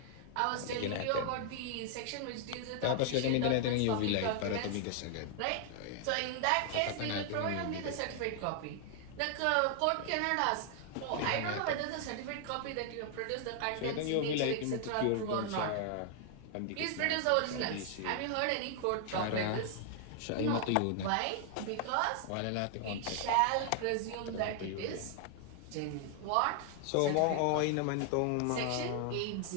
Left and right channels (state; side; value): different; both; correlation 0.00